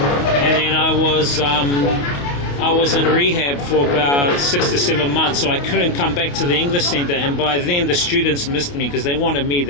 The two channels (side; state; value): right; late; 28 ms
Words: then I I was in rehab for about 6 to 7 months, so I couldn't come back to the English center. And by then, the students missed me because they wanted me.